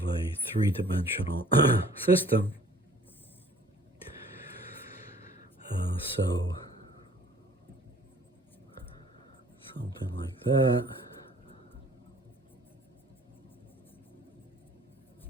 a 3-dimensional system. So something like that.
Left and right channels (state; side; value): normal; both; correlation 0.54